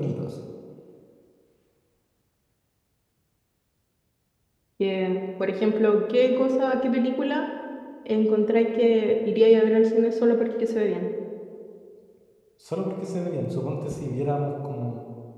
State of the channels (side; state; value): both; identical; correlation 1.00